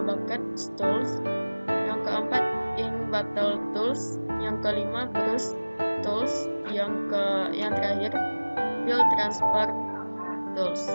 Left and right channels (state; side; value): inverted; both; correlation -1.00